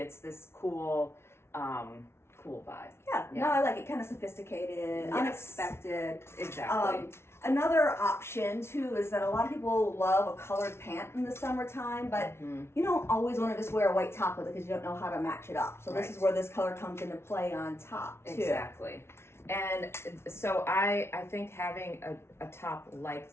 this cool vibe. Yeah. No, I like it. Kind of sophisticated, unexpected. Exactly. Another option too is that a lot of people love a colored pant in the summertime, but you don't always want to just wear a white top with it because you don't know how to match it up. So this is where this color comes into play on top too. Exactly. And so I think having a top like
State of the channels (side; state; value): right; late; 0.12 ms